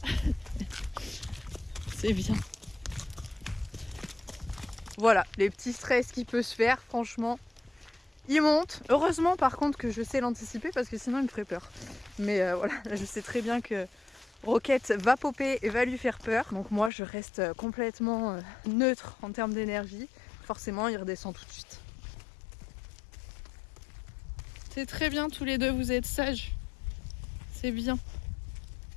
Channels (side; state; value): right; drops out; at 16.9 s